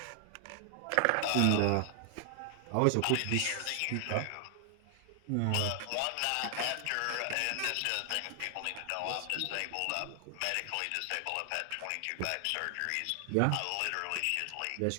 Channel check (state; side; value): different; both; correlation 0.00